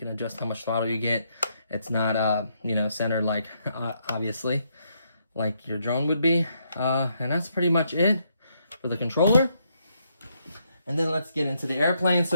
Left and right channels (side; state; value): both; inverted; correlation -0.76